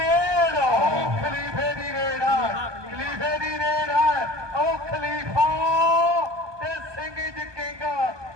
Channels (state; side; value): late; left; 1.2 ms